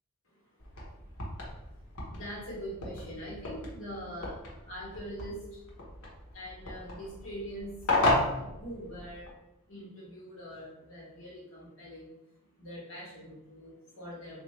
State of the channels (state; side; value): normal; both; correlation -0.01